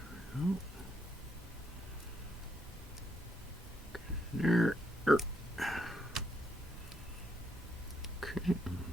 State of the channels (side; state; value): both; normal; correlation 0.76